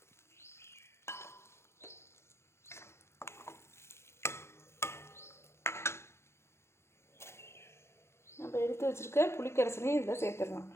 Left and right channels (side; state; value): right; late; 0.13 ms